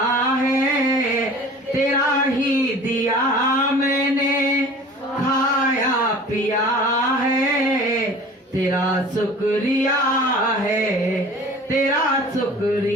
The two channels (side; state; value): both; normal; correlation 0.44